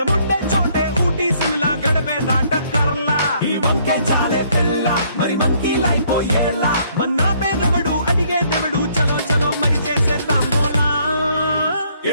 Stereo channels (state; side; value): inverted; both; correlation -0.65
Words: చోటే ఊటీ సిమ్లా గడిపే దాటక్కర్లా ఈ వంకే చాలే పిల్ల మరి మంకీ లైఫ్ ఏళ్ళ మన్నా పేదవడు అడిగే దేవుడు చలో చలో మరి చేసేద్దాం బోలా